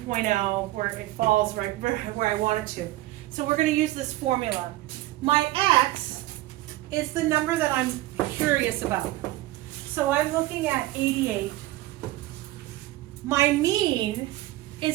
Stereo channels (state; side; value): quieter; left; 17.1 dB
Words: where it falls right where I want it to. So we're going to use this formula. My x is the number that I'm curious about. So I'm looking at 88. My mean